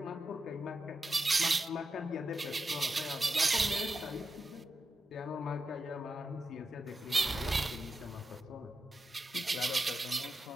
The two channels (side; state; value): both; normal; correlation 0.89